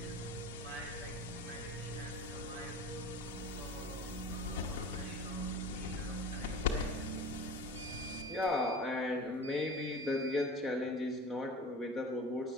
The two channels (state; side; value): normal; both; correlation 0.37